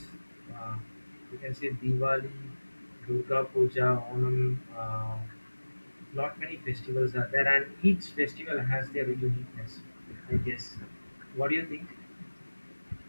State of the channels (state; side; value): inverted; both; correlation -1.00